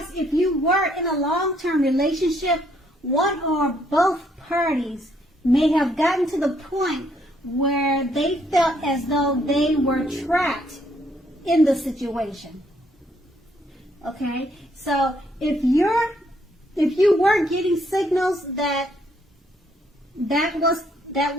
if you were in a long-term relationship, one or both parties may have gotten to the point where they felt as though they were trapped in the situation. Okay, so if you were getting signals that was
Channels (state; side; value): normal; both; correlation 0.70